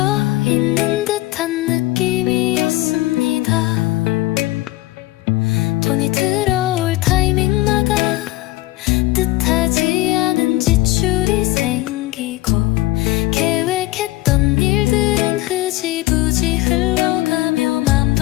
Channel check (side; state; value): right; quieter; 17.9 dB